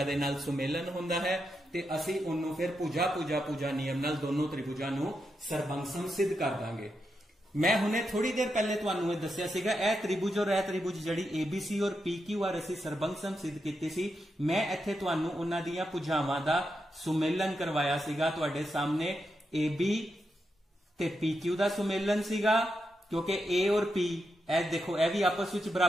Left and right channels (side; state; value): both; normal; correlation 0.85